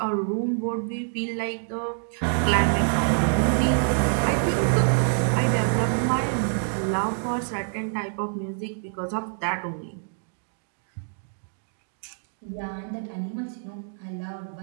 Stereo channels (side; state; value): left; silent; digital silence